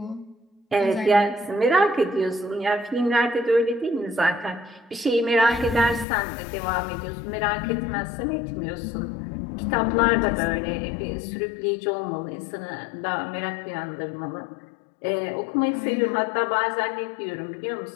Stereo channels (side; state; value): right; drops out; at 6.1 s